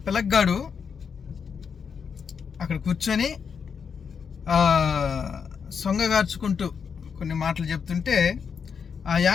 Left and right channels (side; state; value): right; quieter; 6.4 dB